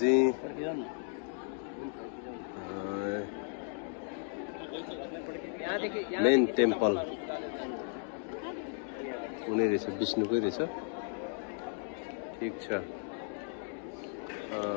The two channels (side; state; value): right; silent; 55 dB below the other